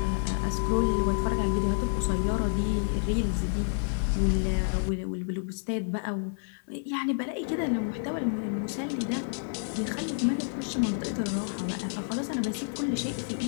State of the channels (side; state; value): right; silent; 58 dB below the other